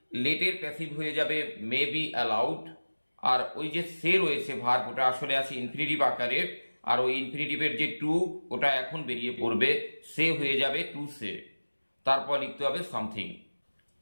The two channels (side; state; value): both; inverted; correlation -1.00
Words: লেটের প্যাসিভ হয়ে যাবে মে বি অ্যালাউড, আর ওই যে সে রয়েছে ভার্ব ওটা আসলে আছে ইনফিনিটিভ আকারের, আর ওই ইনফিনিটিভের যে টু ওটা এখন বেরিয়ে পড়বে, সে হয়ে যাবে টু সে, তারপর লিখতে হবে something.